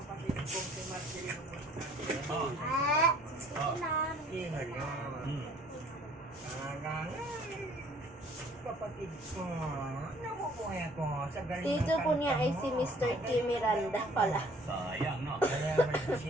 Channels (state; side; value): normal; both; correlation 0.56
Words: kong si Marcelino Oo. Sino yun? Talagang kapatid ko. Nabubuhay ako sa galing ng Tito po niya ay kanta si mo. Mr. K. Miranda pala. Sayang, no? Kaya may